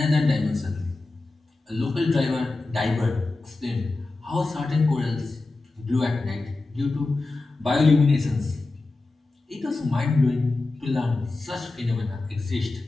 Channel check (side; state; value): right; quieter; 3.3 dB